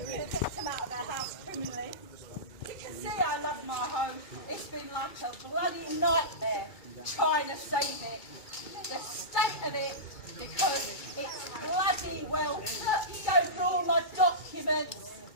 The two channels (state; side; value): late; right; 2.2 ms